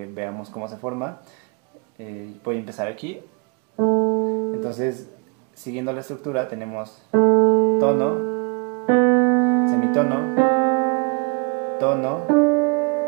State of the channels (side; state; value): left; quieter; 32.6 dB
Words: veamos cómo se forma. Voy a empezar aquí. Entonces, siguiendo la estructura, tenemos tono, semitono, tono,